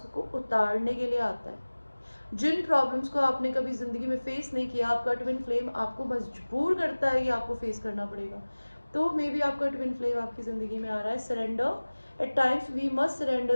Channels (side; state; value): both; inverted; correlation -1.00